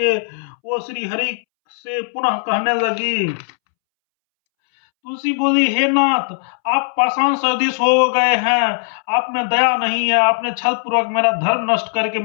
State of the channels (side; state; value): right; silent; 67 dB below the other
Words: वो श्री हरि से पुनः कहने लगी। तुलसी बोली, हे नाथ, आप पाषाण सदृश हो गए हैं, आप में दया नहीं है। आपने छल पूर्वक मेरा धर्म नष्ट करके